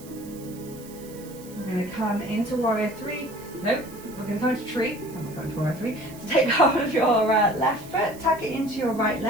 We're going to come into warrior three. Nope, we're going to come into tree. I'm not going to warrior three. So take hold of your left foot, tuck it into your right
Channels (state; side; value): noise; right; hiss, 20 dB below the sound